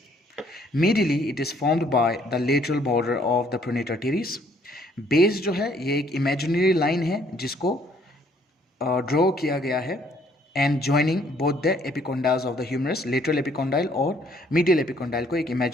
Medially it is formed by the lateral border of the pronator teres. Base जो है ये एक इमेजिनरी लाइन है जिसको ड्रॉ किया गया है and joining both the epicondyles of the humerus, lateral epicondyle और मीडियल एपिकोंडाइल को एक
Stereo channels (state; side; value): normal; both; correlation 0.64